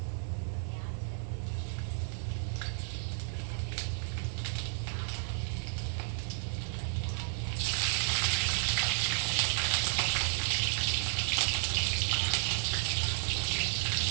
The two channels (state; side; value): silent; left; 56 dB below the other